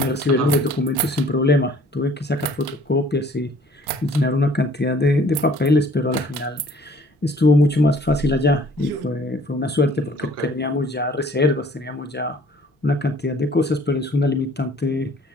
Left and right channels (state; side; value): normal; both; correlation 0.55